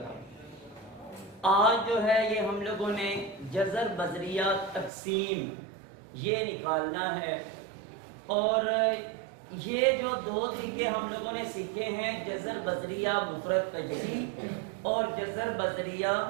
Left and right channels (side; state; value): left; drops out; at 4.9 s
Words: تھا۔ آج جو ہے یہ ہم لوگوں نے جزر بذریعہ تقسیم یہ نکالنا ہے، اور یہ جو دو طریقے ہم لوگوں نے سیکھے ہیں، جزر بذریعہ مفرد تجزی اور جزر بذریعہ